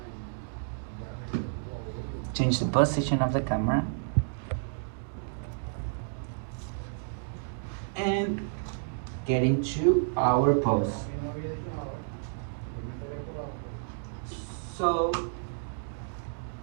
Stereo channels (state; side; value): silent; left; digital silence